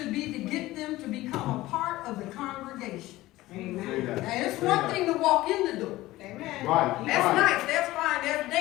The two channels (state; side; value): quieter; right; 17.4 dB